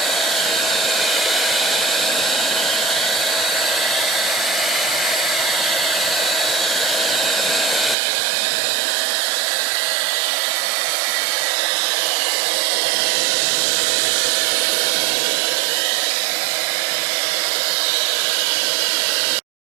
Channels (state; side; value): drops out; left; at 8.0 s